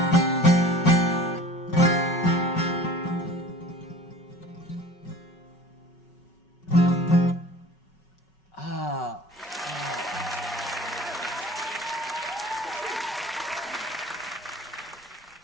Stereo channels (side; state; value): both; normal; correlation 0.43